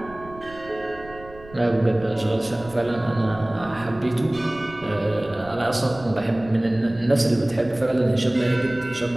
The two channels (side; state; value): right; noise; rumble, 19 dB below the sound